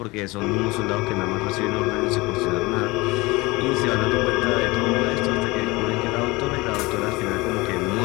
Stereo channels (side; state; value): right; quieter; 22.9 dB